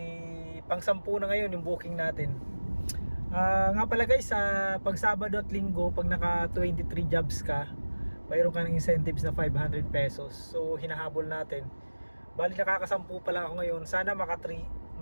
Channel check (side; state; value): both; inverted; correlation -1.00